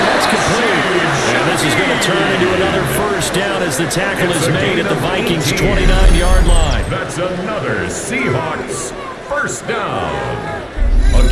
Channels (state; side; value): identical; both; correlation 1.00